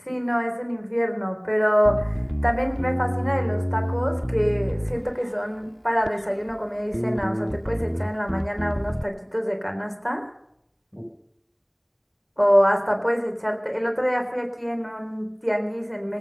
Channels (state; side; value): identical; both; correlation 1.00